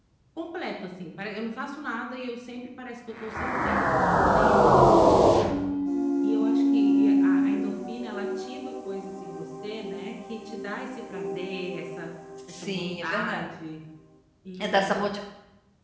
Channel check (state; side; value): identical; both; correlation 1.00